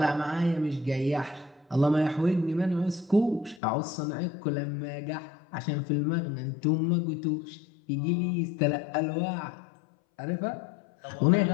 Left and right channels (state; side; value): drops out; right; at 3.6 s